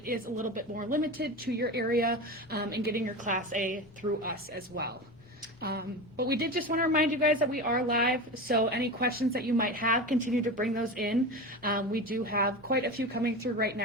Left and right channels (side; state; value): both; normal; correlation 0.26